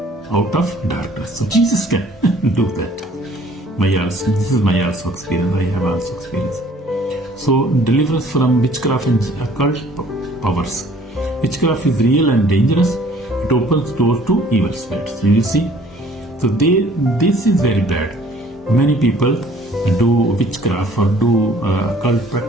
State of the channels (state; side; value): normal; both; correlation 0.56